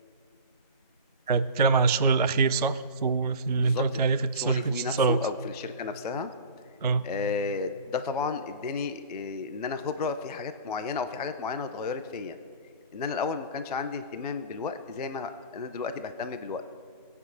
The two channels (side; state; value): both; inverted; correlation -0.36